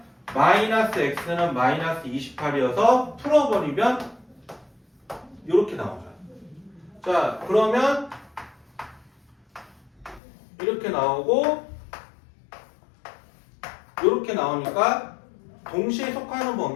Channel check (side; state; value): right; drops out; at 10.2 s